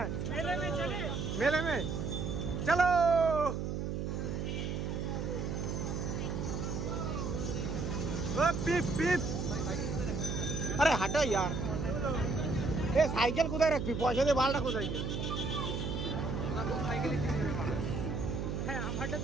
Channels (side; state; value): right; noise; hum, 2 dB below the sound